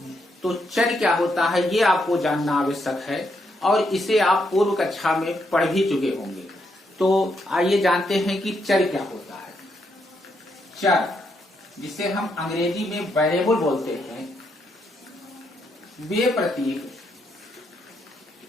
तो चर क्या होता है ये आपको जानना आवश्यक है और इसे आप पूर्व कक्षा में पढ़ भी चुके होंगे। तो आइए जानते हैं कि चर क्या होता है। चर, जिसे हम अंग्रेजी में वेरिएबल बोलते हैं, वे प्रतीक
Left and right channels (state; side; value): normal; both; correlation 0.78